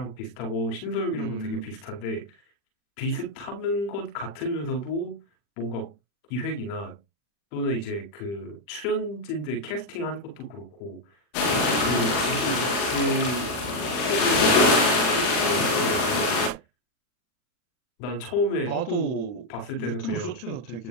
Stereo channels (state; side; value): late; right; 40 ms